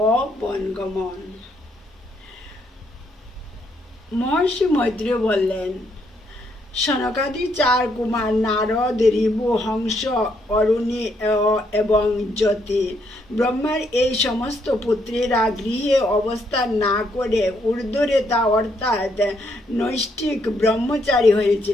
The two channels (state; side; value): normal; both; correlation 0.74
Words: ও বনগমন। মহর্ষি মৈত্রেয় বললেন, সনকাদি চার কুমার নারদ, ঋভু, হংস, অরুণী এবং জ্যোতি ব্রহ্মার এই সমস্ত পুত্রেরা গৃহে অবস্থান না করে ঊর্ধ্বরেতা অর্থাৎ নৈষ্ঠিক ব্রহ্মচারী